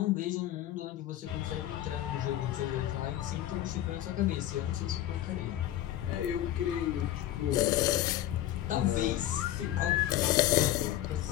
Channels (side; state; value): right; quieter; 13.3 dB